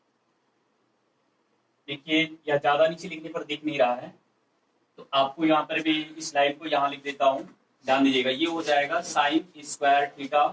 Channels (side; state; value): both; identical; correlation 1.00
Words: देखिए या ज्यादा नीचे लिखने पर दिख नहीं रहा है तो आपको यहाँ पर भी इस लाइन को यहाँ लिख देता हूं, ध्यान दीजिएगा। ये हो जाएगा साइन स्क्वायर थीटा